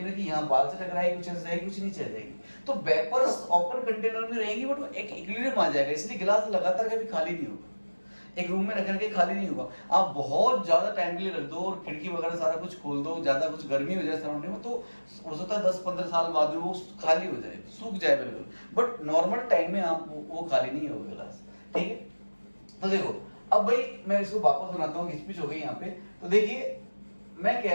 की यहाँ बाल से टकराएगी, कुछ ऐसे जाएगी, कुछ नीचे जाएगी। तो वेपर्स ओपन कंटेनर में रहेंगी, बट वो एक इक्विलिब्रियम आ जाएगा, इसलिए गिलास लगातार कभी खाली नहीं होगा, एक रूम में रख करके खाली नहीं होगा। आप बहुत ज्यादा टाइम के लिए रख दो और खिड़की वगैरह सारा कुछ खोल दो, ज्यादा कुछ गर्मी हो जाए सराउंडिंग में, तो हो सकता है 10-15 साल बाद में वो खाली हो जाए, सूख जाए बिल्कुल, बट नॉर्मल टाइम में आप वो खाली नहीं होगा गिलास, ठीक है। तो देखो अब भाई मैं इसको वापस बनाता हूँ, घिचपिच हो गई यहाँ पे। तो देखिए मैं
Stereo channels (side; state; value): both; inverted; correlation -1.00